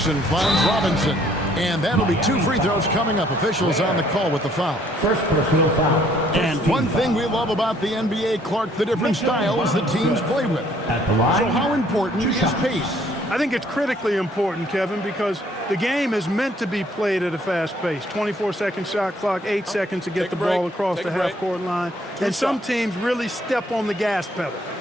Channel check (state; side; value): normal; both; correlation 0.63